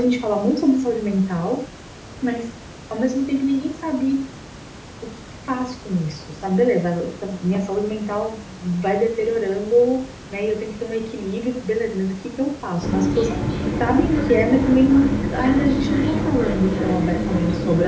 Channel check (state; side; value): identical; both; correlation 1.00